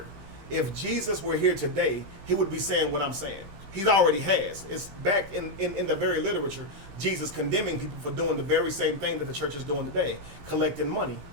If Jesus were here today, he would be saying what I'm saying. He already has. It's back in the very literature, Jesus condemning people for doing the very same thing that the church is doing today, collecting money.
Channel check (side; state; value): left; late; 15 ms